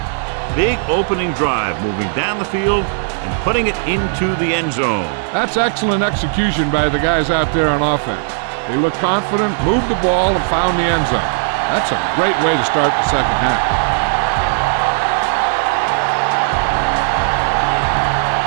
Big opening drive, moving down the field and putting it into the end zone. That's excellent execution by the guys out there on offense. They looked confident, moved the ball, and found the end zone. That's a great way to start the second half.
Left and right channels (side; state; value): left; silent; 67 dB below the other